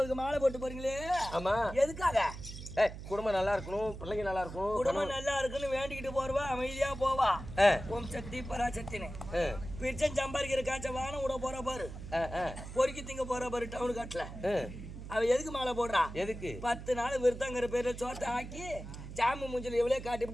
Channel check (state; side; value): noise; right; hum, 11 dB below the sound